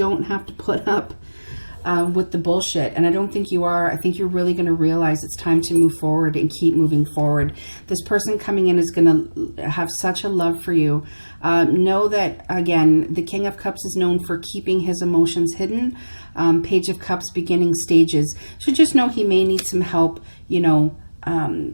have to put up with the bullshit, and I don't think you are. I think you're really going to realize it's time to move forward and keep moving forward. This person coming in is going to have such a love for you. Know that, again, the King of Cups is known for keeping his emotions hidden. Page of Cups, beginning stages. So just know he may need some help, you know,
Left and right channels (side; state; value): both; inverted; correlation -1.00